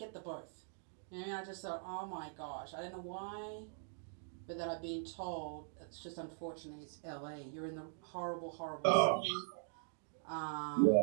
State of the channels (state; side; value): silent; left; digital silence